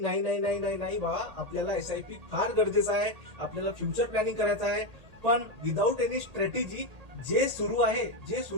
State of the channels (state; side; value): late; left; 1.8 ms